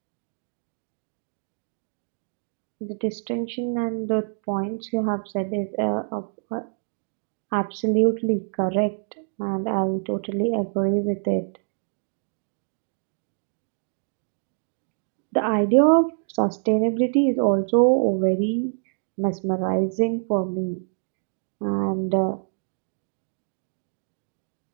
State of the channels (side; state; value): left; silent; digital silence